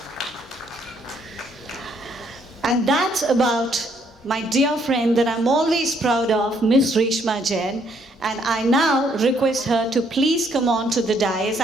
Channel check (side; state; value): both; normal; correlation 0.69